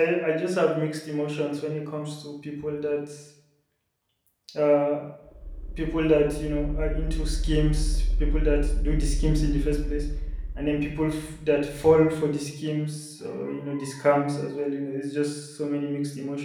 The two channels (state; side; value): identical; both; correlation 1.00